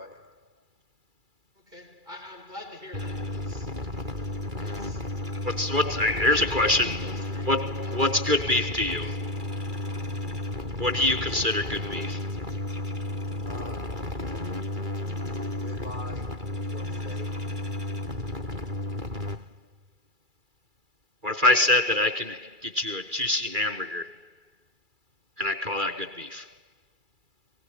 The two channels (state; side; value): late; left; 2.3 ms